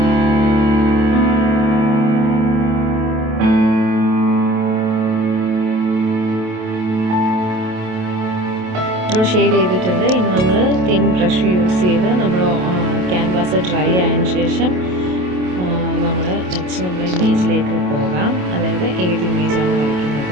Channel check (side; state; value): left; late; 28 ms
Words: നമ്മൾ ഷെയ്ഡ് ചെയ്തിട്ടുണ്ട്. ഇനി നമ്മൾ തിൻ ബ്രഷ് യൂസ് ചെയ്ത് നമ്മൾ ക്യാൻവാസ് ഡ്രൈ ആയതിനു ശേഷം നമ്മൾ നെക്സ്റ്റ് നമ്മൾ ഇമേജിലേക്ക് പോകാം. അതായത് ഏത് ഇമേജാണ്